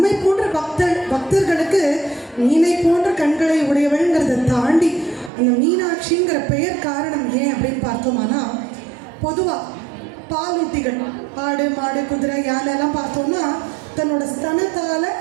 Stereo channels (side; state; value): left; drops out; at 5.3 s